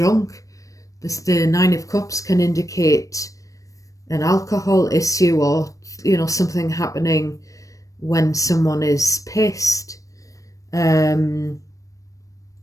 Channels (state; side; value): late; right; 0.16 ms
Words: The Nine of Cups can indicate an alcohol issue, or something happening when someone is pissed.